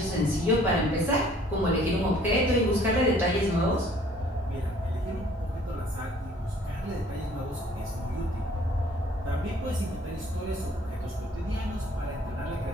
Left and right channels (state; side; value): normal; both; correlation 0.56